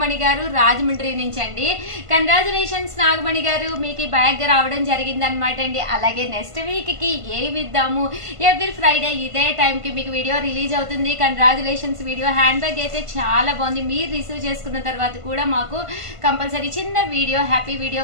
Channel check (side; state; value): left; late; 1.5 ms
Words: గారు రాజమండ్రి నుంచి అండి. కంగ్రాచులేషన్స్ నాగమణి గారు, మీకు ఈ బ్యాగ్ రావడం జరిగింది అనమాట అండి. అలాగే నెక్స్ట్ వీక్ కి ఏమి ఇద్దాము, ఎవ్రీ ఫ్రైడే ఇదే టైంకి మీకు వీడియో రిలీజ్ అవుతుంది. Congratulations video. హ్యాండ్ బ్యాగ్ అయితే చాలా బాగుంది. మీరు రిసీవ్ చేసుకున్న తర్వాత కూడా మాకు కంపల్సరీ చిన్న వీడియో హ్యాపీ